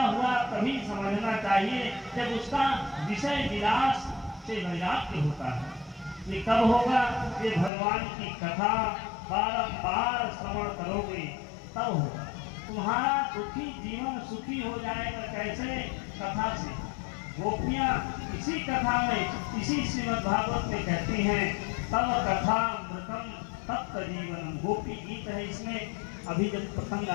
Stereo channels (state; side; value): drops out; right; at 7.7 s